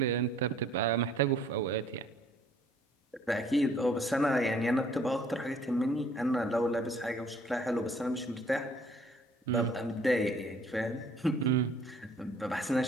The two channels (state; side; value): normal; both; correlation 0.58